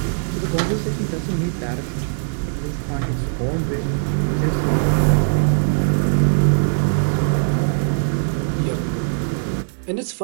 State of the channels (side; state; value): left; silent; digital silence